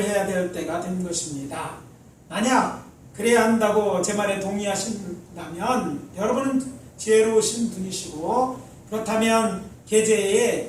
해야 될 때가 된 것입니다. 만약 그래야 한다고 제 말에 동의하신다면 여러분은 지혜로우신 분이시고, 그렇다면 계제에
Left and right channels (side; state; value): both; identical; correlation 1.00